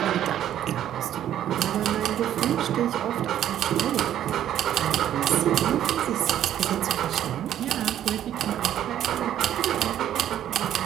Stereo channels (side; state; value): left; quieter; 11.2 dB